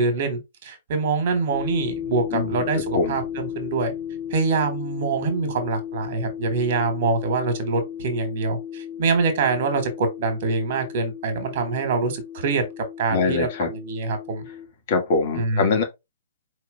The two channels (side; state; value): both; inverted; correlation -0.38